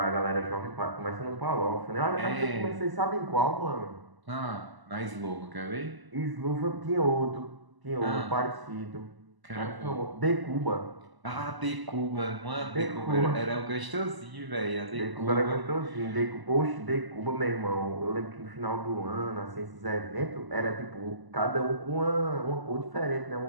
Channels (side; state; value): left; late; 1.0 ms